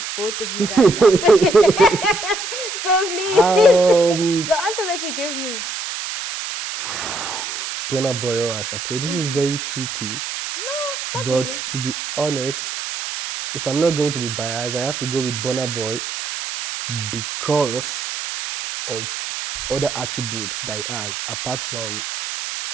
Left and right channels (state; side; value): noise; right; hiss, 6 dB below the sound